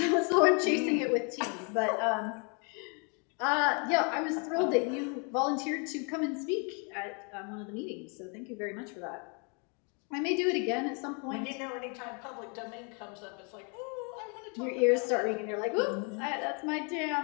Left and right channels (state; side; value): quieter; right; 35.7 dB